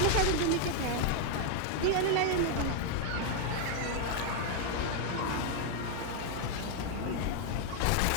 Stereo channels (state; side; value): different; both; correlation 0.00